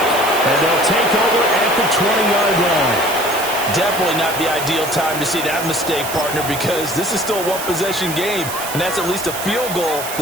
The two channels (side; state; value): right; noise; hiss, 8 dB below the sound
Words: and they'll take over at the 20-yard line. Definitely not the ideal time to see that mistake, partner, because this is still a one-possession game, and that's at least a field goal